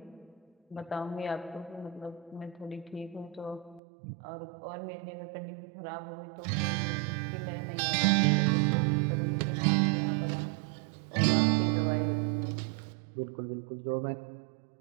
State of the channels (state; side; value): drops out; left; at 3.8 s